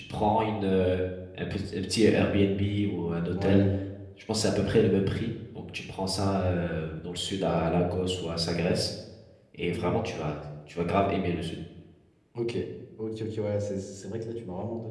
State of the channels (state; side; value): identical; both; correlation 1.00